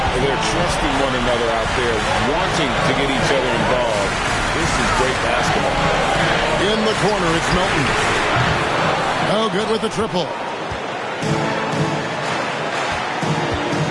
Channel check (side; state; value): both; identical; correlation 1.00